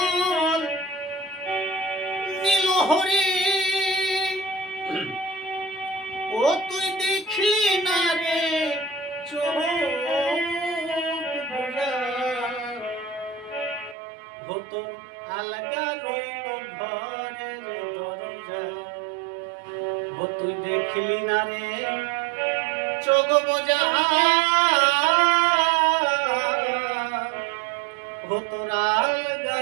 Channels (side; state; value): left; drops out; at 14.0 s